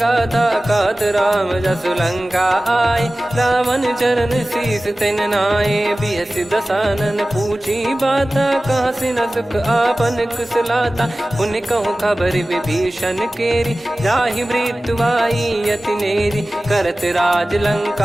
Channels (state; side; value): normal; both; correlation 0.97